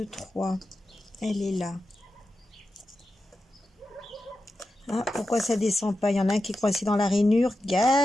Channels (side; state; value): both; normal; correlation 0.91